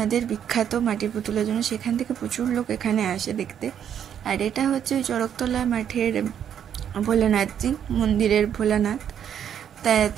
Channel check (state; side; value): quieter; left; 9.0 dB